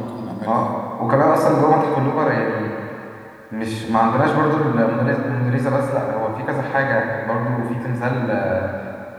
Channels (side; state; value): both; identical; correlation 1.00